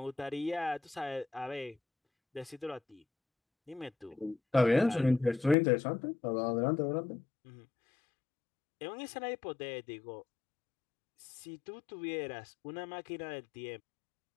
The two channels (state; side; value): drops out; right; at 5.6 s